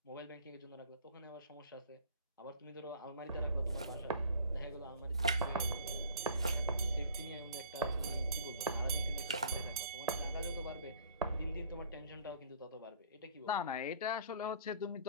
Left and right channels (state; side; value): inverted; both; correlation -0.53